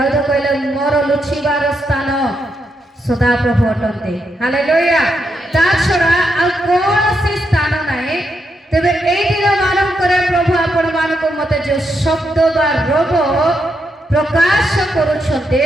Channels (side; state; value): both; normal; correlation 0.81